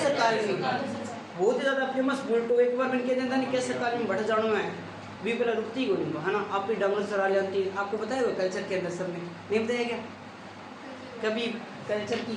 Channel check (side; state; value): both; identical; correlation 1.00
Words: काल में बहुत ही ज्यादा फेमस बुल्ट। एक बार मैंने कह देता नहीं कैसे काल में बढ़ जाना है भी पहले रुकती ही नहीं, है ना? आप भी डंगर चरा लेती। आपको बताया हुआ कल्चर के अंदर सब में नहीं बताया क्या कभी? कल्चर की